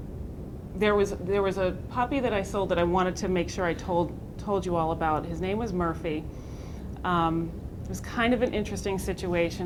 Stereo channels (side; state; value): both; identical; correlation 1.00